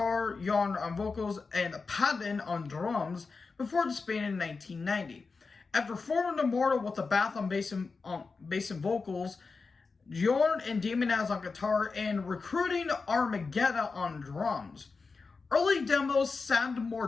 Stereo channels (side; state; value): right; quieter; 4.4 dB